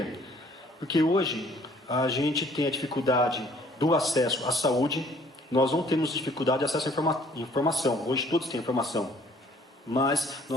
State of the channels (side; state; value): both; normal; correlation 0.58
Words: Porque hoje a gente tem a dificuldade do acesso à saúde, nós não temos dificuldade de acesso à informação, hoje todos têm informação, mas